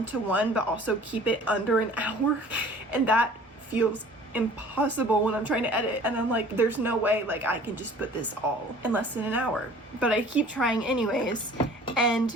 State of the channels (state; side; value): normal; both; correlation 0.49